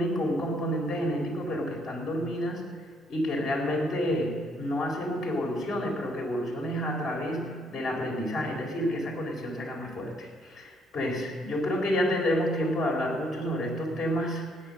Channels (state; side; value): normal; both; correlation 0.69